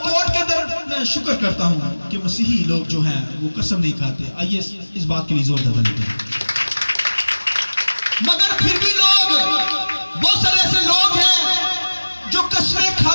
के अंदर मैं शुक्र करता हूं कि मसीही लोग जो हैं वो कसम नहीं खाते। आइए इस बात के लिए जोर दबा लेते हैं। मगर फिर भी लोग, बहुत सारे ऐसे लोग हैं जो कसमें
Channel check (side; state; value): both; inverted; correlation -1.00